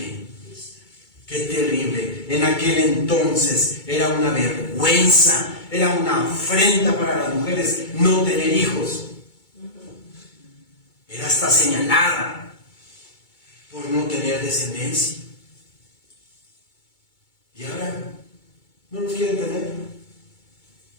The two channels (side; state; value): right; late; 2.2 ms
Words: ¡Qué terrible! En aquel entonces era una vergüenza, era una afrenta para las mujeres no tener hijos. Era hasta señalada por no tener descendencia. Y ahora no los quieren tener.